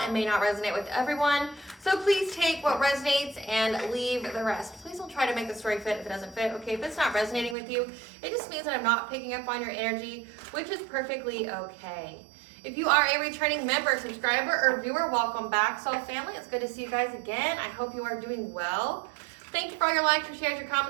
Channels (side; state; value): left; drops out; at 7.6 s